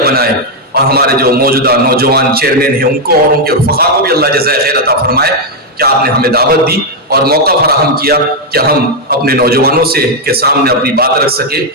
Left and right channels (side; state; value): both; normal; correlation 0.01